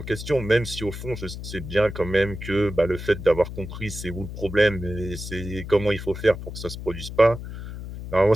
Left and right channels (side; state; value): left; noise; hum, 9 dB below the sound